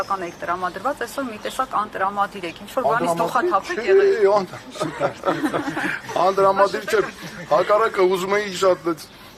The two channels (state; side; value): identical; both; correlation 1.00